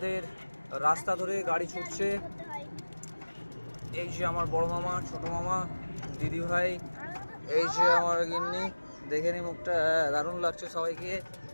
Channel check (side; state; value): both; inverted; correlation -1.00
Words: রাস্তা ধরে, গাড়ি ছুটছে। এই যে আমার বড় মামা, ছোট মামা, দিদি ভাই, এই যে আমার গিন্নি, দেখে নি মুখটা, দারুণ লাগছে সবাইকে।